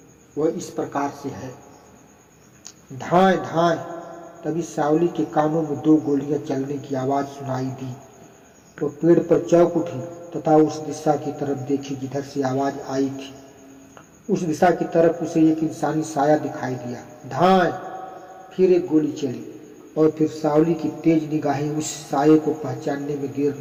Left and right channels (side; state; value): both; identical; correlation 1.00